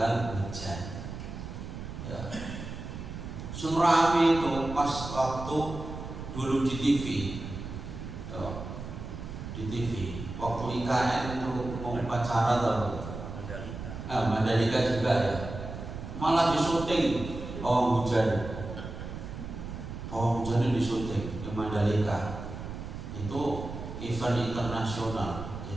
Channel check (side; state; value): right; noise; rumble, 9 dB below the sound